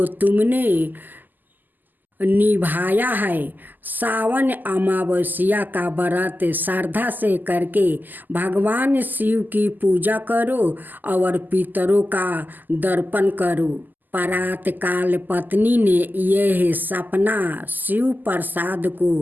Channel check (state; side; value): late; left; 0.086 ms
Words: तुमने निभाया है। सावन अमावस्या का व्रत श्रद्धा से करके भगवान शिव की पूजा करो और पितरों का दर्पण करो। प्रातःकाल पत्नी ने यह सपना शिव प्रसाद को